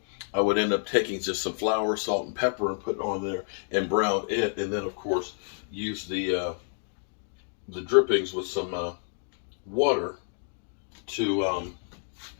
I would end up taking just some flour, salt, and pepper and put it on there and brown it, and then, of course, use the drippings with some water to,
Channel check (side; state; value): right; silent; digital silence